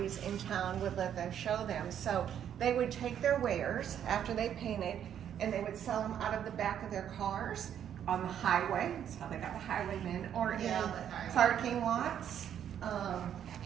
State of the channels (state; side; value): quieter; left; 9.5 dB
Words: in town would let them show them. So they would take their wares after they painted, and they would sell them out of the back of their cars on the highway. That's how they got the highwaymen, or in parking lots.